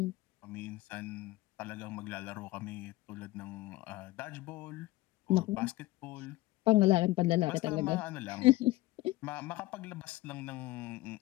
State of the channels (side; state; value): right; quieter; 18.7 dB